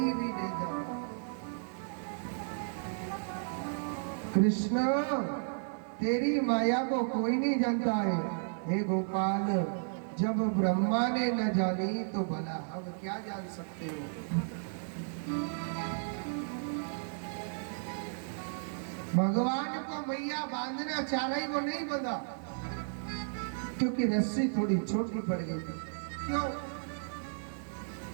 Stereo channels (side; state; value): left; silent; 55 dB below the other